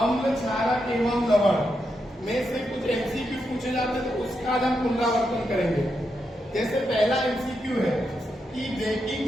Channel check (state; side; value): normal; both; correlation 0.84